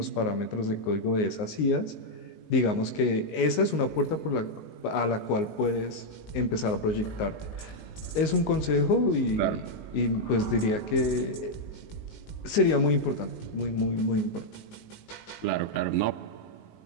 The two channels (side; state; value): right; late; 19 ms